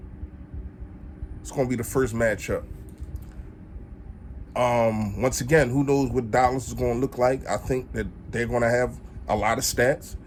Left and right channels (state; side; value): identical; both; correlation 1.00